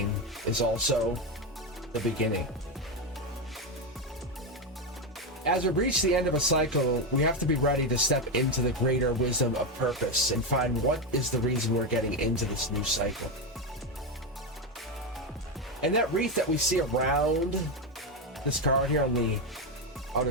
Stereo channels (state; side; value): normal; both; correlation 0.10